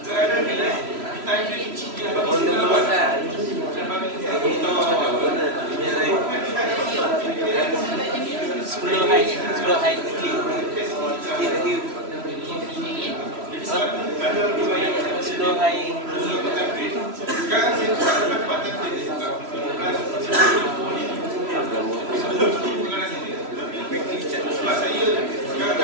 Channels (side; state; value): left; late; 3.0 ms